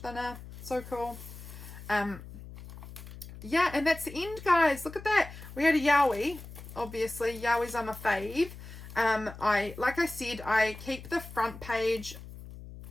So cool. Yeah, and that's the end, guys. Look at that. We had a yowie. Obviously, yowies are my fave. Like I said, I keep the front page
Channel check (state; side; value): noise; left; hum, 14 dB below the sound